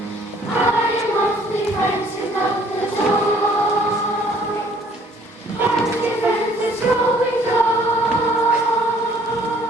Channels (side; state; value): both; normal; correlation 0.59